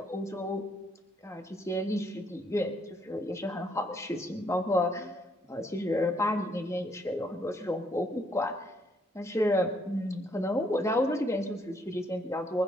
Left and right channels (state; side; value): normal; both; correlation 0.70